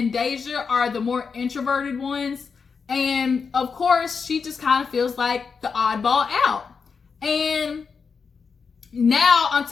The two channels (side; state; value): right; quieter; 5.5 dB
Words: Deyjah are the more introverted ones. And of course, she just kind of feels like the oddball out. And now, on